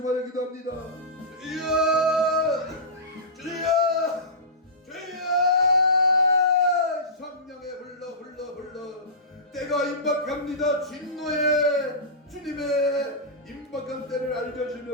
말해 기도합니다. 주여 주여 주여 성령의 불러 때가 임박합니다. 진노의 주님의 임박한 때를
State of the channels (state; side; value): normal; both; correlation -0.19